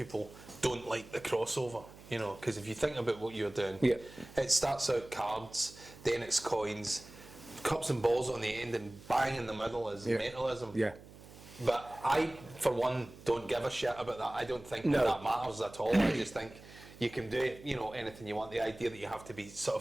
don't like the crossover, you know, because if you think about what you're doing, it starts out cards, then it's coins, cups and balls on the end, and bang in the middle is mentalism. Yeah. But I, for one, don't give a shit about that. I don't think that matters at all. I just think you can do, you know, anything you want. The idea that you have to be sort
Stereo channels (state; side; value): noise; right; hum, 19 dB below the sound